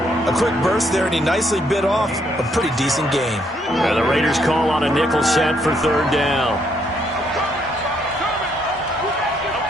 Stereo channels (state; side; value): normal; both; correlation 0.72